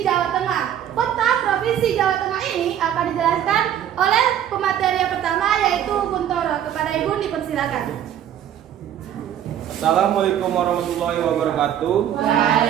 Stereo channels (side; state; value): left; quieter; 10.3 dB